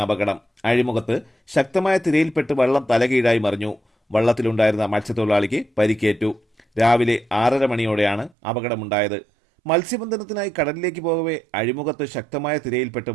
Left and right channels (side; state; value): left; drops out; at 8.3 s